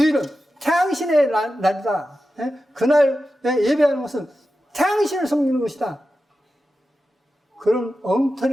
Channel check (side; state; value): both; normal; correlation 0.92